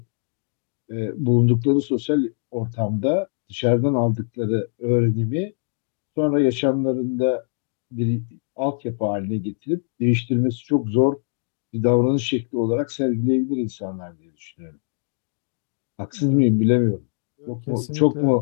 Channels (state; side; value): silent; right; digital silence